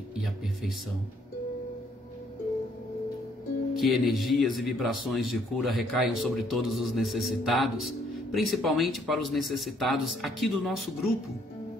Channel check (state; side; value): normal; both; correlation 0.67